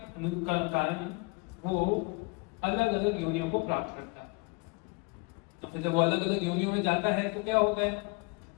कारण वो अलग अलग योनियों को प्राप्त करता है। तो फिर जब वो अलग अलग योनियों में जाता है तो क्या होता है?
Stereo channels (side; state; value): right; quieter; 28.7 dB